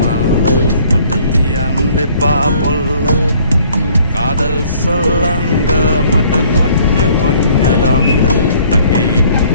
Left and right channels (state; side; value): inverted; both; correlation -0.58